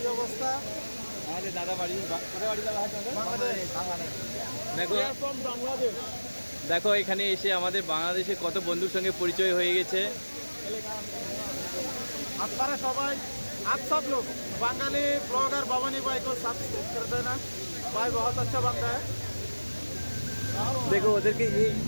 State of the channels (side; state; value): both; inverted; correlation -1.00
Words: অবস্থা? আমাদের দাদা বাড়ি কোথায় বাড়ি দাদা? দেখো দেখো এখানে এসে আমাদের বাংলাদেশে কত বন্ধুর সঙ্গে পরিচয় হয়ে গেছে। আপনারা সবাই आप सब लोग बंगाली ब्लॉगर भवानी भाई को सब्सक्राइब कर देना। भाई बहुत अच्छा बंदा है। দেখো ওদেরকে